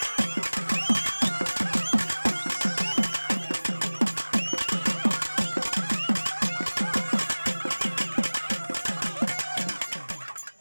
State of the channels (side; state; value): both; inverted; correlation -1.00